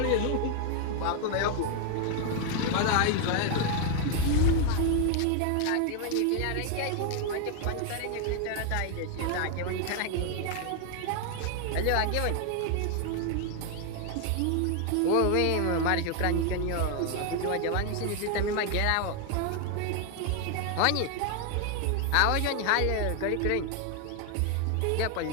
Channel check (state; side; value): different; both; correlation 0.00